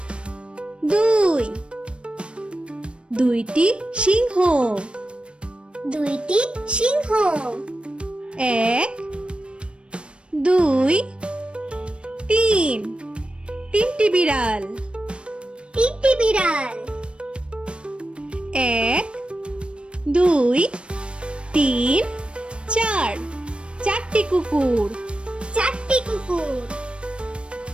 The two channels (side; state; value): left; late; 0.058 ms